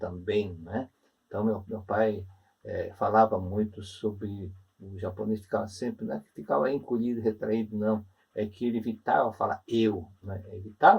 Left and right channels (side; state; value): both; identical; correlation 1.00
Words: né? Então meu pai falava muito sobre o japonês, ficava sempre, não é que ficava encolhido, retraído, não, é que ele evitava falar eu, né?